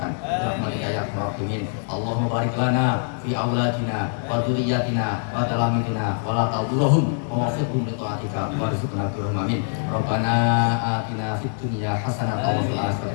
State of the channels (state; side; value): silent; right; digital silence